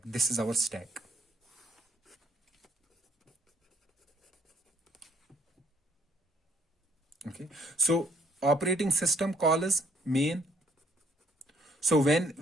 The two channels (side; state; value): both; normal; correlation 0.66